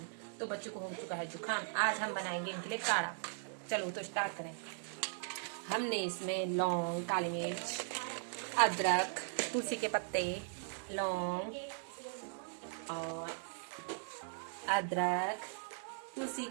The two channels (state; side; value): silent; left; digital silence